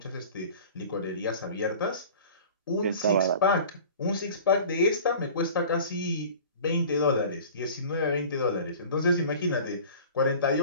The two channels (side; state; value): both; inverted; correlation -0.42